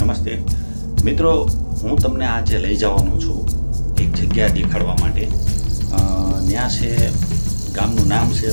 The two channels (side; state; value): both; inverted; correlation -1.00